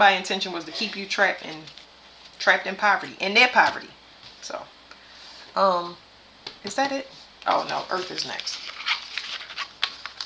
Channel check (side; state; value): both; identical; correlation 1.00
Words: intention was to keep you trapped in poverty, in their poverty. So, is that it? Oh no, Earth is next.